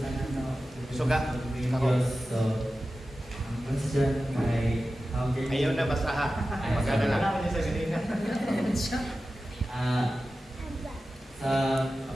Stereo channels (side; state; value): both; normal; correlation 0.94